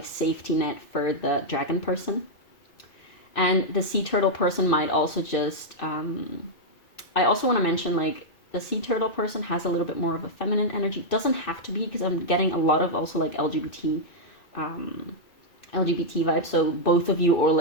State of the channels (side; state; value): right; late; 2.3 ms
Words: safety net for the dragon person. And the sea turtle person might also just, I also want to mention like the sea turtle person has a little bit more of a feminine energy. Doesn't have to be, because I'm getting a lot of also like LGBT vibes. So both of you, or